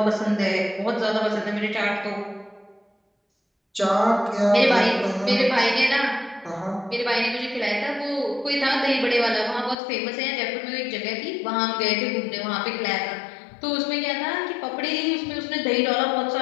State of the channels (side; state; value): right; drops out; at 9.8 s